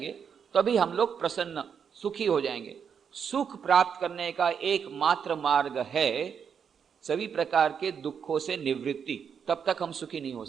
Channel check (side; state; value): left; quieter; 7.1 dB